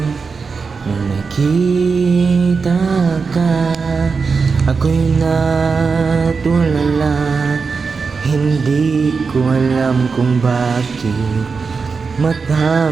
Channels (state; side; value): quieter; left; 4.9 dB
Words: nung nakita ka. Ako'y natulala, hindi ko alam kung bakit mata